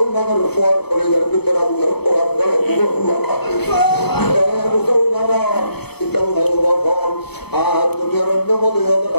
ফর করে যার ভিতরে আল্লাহর কোরআন মুসলমান আর দুনিয়ার অন্য মদের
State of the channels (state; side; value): late; right; 0.98 ms